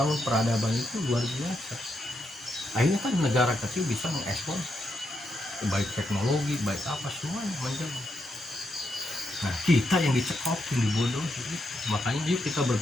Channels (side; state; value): both; normal; correlation 0.82